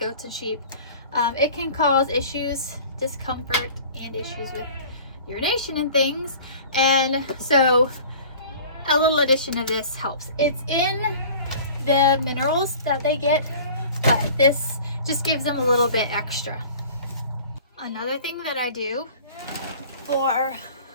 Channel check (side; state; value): both; inverted; correlation -0.44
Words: and sheep, it can cause issues, discomfort, and issues with urination and things. And so a little addition of this helps. It's in the minerals that they get, but this just gives them a little bit extra. Another thing that I do for